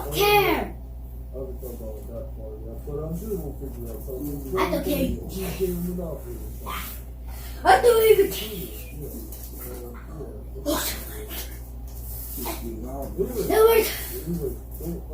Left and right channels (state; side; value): identical; both; correlation 1.00